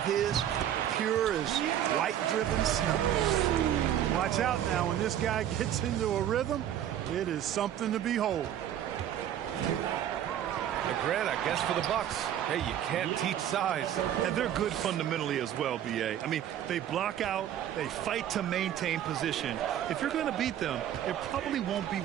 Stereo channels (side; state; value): left; quieter; 10.7 dB